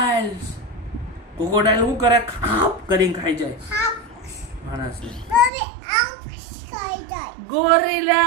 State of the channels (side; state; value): left; drops out; at 5.5 s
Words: શું કરે? ખાપ કરીને ખાઈ જાય માણસને.